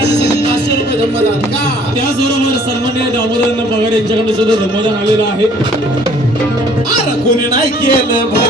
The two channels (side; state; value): both; normal; correlation 0.57